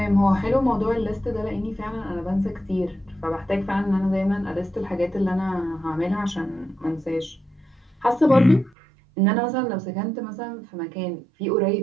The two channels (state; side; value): drops out; left; at 8.7 s